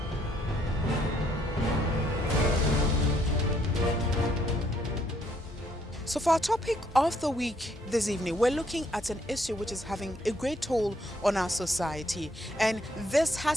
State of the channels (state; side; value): normal; both; correlation 0.69